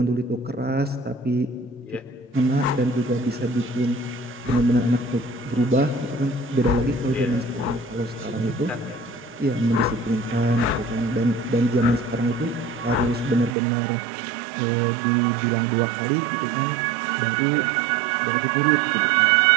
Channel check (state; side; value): drops out; left; at 13.6 s